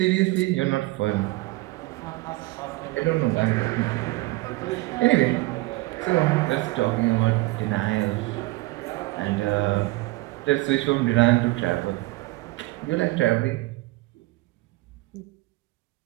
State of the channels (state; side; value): quieter; left; 20.7 dB